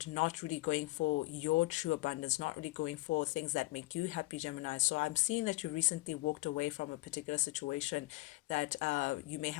not really going for your true abundance, not really going for things that make you happy, Gemini. So I'm seeing that you recently walked away from a particular situation that you may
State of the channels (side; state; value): right; quieter; 20.5 dB